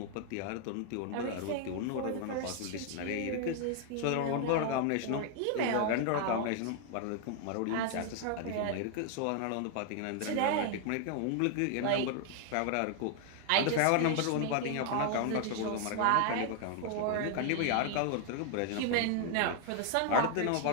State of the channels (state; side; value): different; both; correlation 0.00